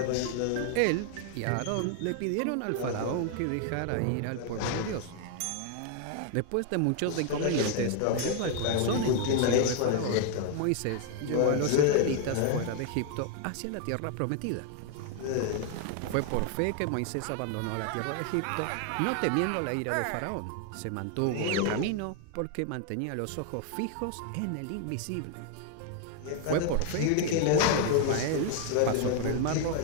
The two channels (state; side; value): different; both; correlation 0.00